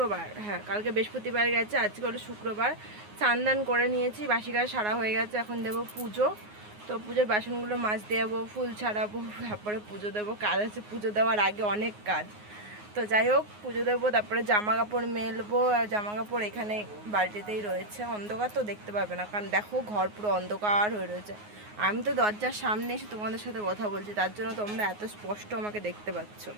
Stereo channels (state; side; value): late; left; 9.6 ms